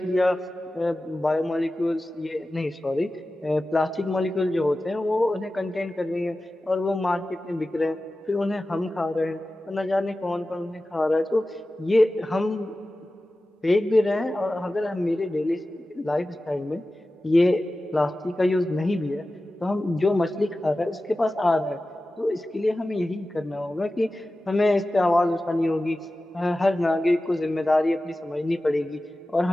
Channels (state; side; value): normal; both; correlation 0.95